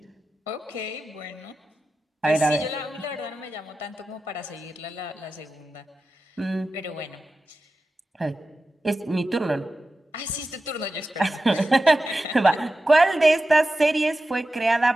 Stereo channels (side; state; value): both; normal; correlation 0.93